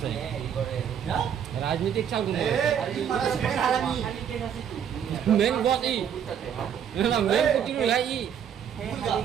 राजनीतिक चाल मेन बॉस ई मेन कुटी লাই ই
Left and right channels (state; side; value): quieter; left; 8.5 dB